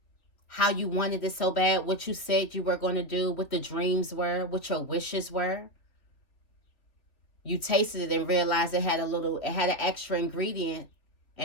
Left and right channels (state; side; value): late; right; 3.1 ms